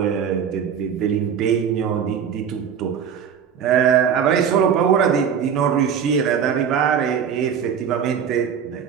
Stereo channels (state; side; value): quieter; left; 7.8 dB